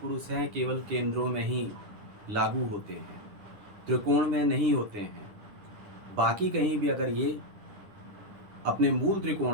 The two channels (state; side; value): late; left; 9.9 ms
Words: हैं केवल केंद्रों में ही लागू होते हैं, त्रिकोण में नहीं होते हैं। बाकी कहीं भी अगर ये अपने मूल